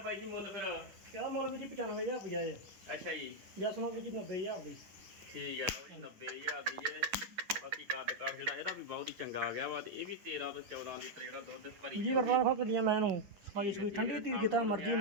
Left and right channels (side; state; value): left; late; 10 ms